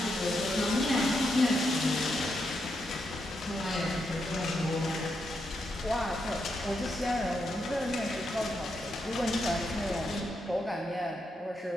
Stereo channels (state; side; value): normal; both; correlation 0.82